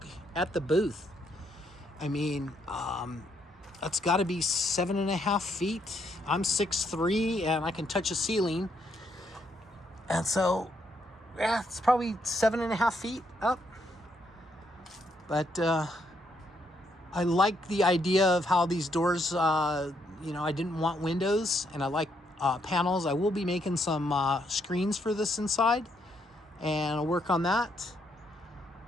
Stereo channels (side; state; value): both; normal; correlation 0.75